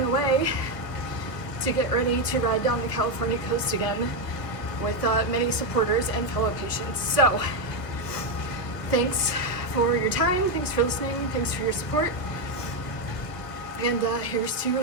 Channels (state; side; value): late; right; 1.5 ms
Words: away to get ready to ride down the California coast again with many supporters and fellow patients. So thanks for your time, thanks for listening, thanks for your support, and here's to